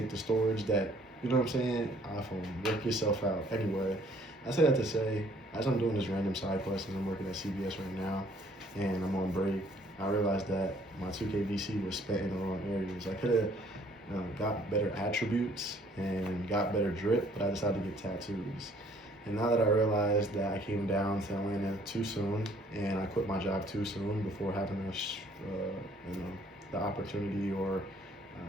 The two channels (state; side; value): normal; both; correlation 0.60